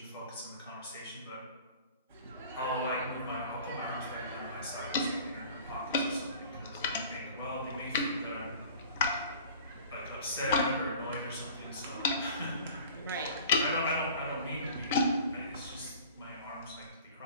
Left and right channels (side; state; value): both; inverted; correlation -0.45